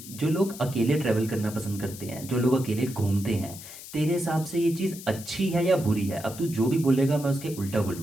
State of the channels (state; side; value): noise; left; hiss, 14 dB below the sound